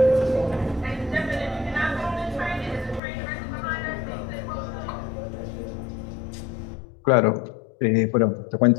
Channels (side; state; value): right; drops out; at 3.0 s